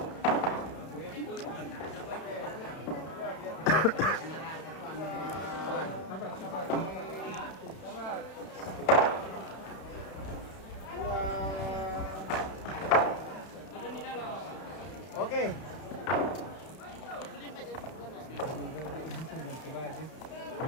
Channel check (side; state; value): right; late; 32 ms